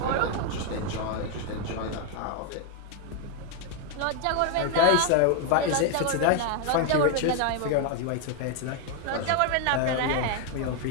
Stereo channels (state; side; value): different; both; correlation 0.01